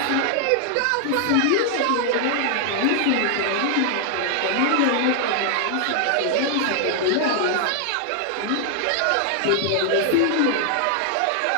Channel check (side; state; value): both; different; correlation 0.00